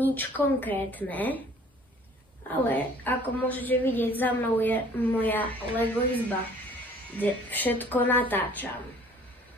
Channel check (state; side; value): normal; both; correlation 0.53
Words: konkrétne, ale ako môžete vidieť, za mnou je moja Lego izba, kde všetko natáčam.